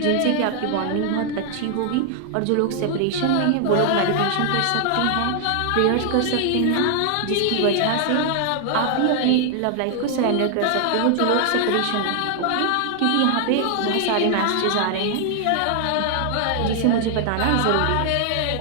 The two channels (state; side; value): different; both; correlation 0.00